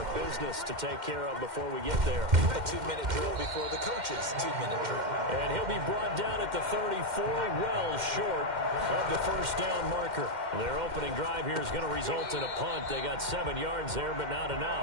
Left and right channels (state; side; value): late; left; 2.1 ms